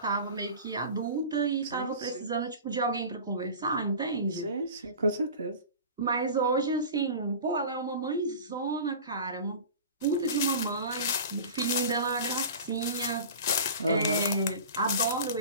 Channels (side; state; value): both; inverted; correlation -0.36